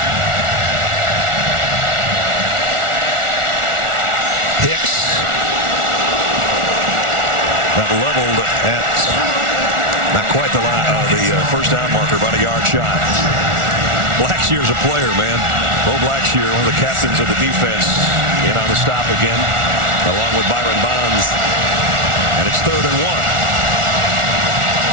Hicks got leveled at not quite the first down marker, about a yard shy. Blackshear's a player, man. Bo Blackshear, one of the captains of the defense, in on the stop again, along with Byron Bonds. And it's 3rd and 1.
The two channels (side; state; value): left; late; 1.4 ms